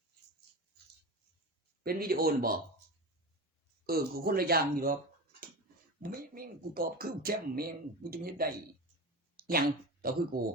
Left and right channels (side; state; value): both; normal; correlation 0.26